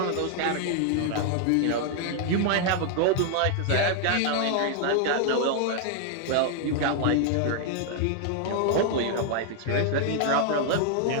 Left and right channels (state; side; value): different; both; correlation 0.00